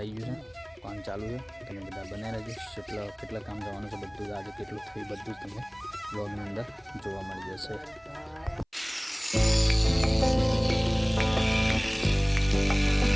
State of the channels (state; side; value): identical; both; correlation 1.00